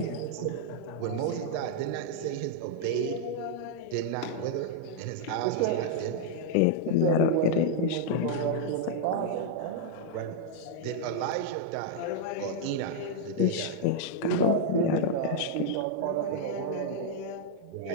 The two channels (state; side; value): different; both; correlation -0.01